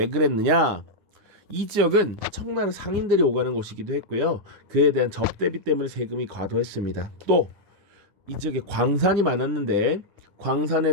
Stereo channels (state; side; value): late; left; 9.7 ms